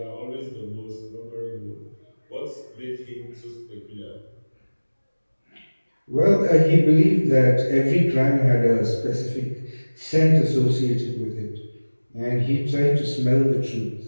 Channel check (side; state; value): both; inverted; correlation -1.00